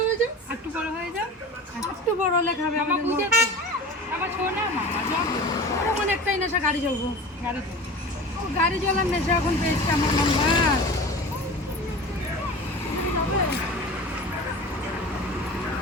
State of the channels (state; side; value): normal; both; correlation 0.35